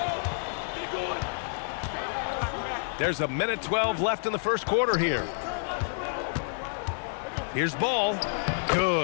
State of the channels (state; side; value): silent; right; 59 dB below the other